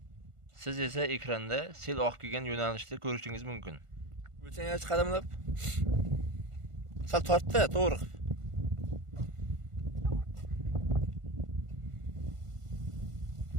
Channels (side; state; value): left; late; 1.5 ms